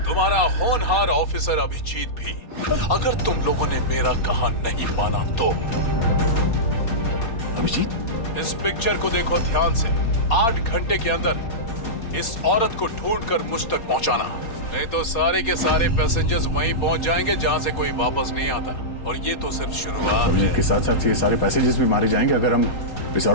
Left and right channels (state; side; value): late; right; 4.2 ms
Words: तुम्हारा होनहार ऑफिसर अभिजीत भी। अगर तुम लोगों ने मेरा कहा नहीं माना तो अभिजीत, इस पिक्चर को देखो ध्यान से। 8 घंटे के अंदर इस औरत को ढूंढकर मुझ तक पहुंचाना, नहीं तो सारे के सारे पैसेंजर्स वहीं पहुंच जाएंगे जहां से कोई वापस नहीं आता। और ये तो सिर्फ शुरुआत है। के साथ साथ ये सारे पैसेंजर्स भी मारे जाएंगे अगर हम इस